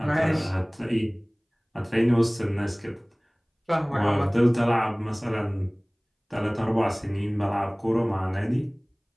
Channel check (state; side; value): identical; both; correlation 1.00